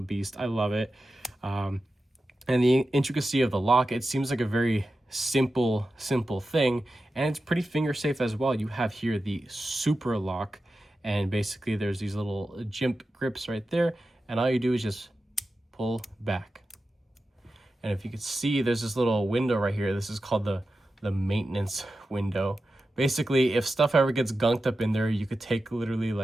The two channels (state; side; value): normal; both; correlation 0.92